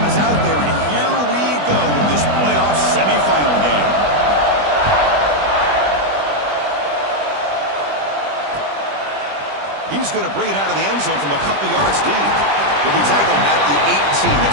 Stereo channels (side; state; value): left; late; 20 ms